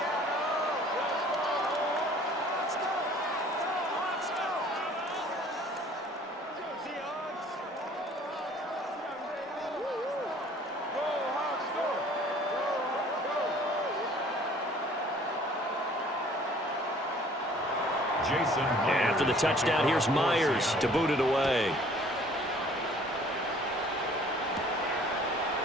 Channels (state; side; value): normal; both; correlation 0.54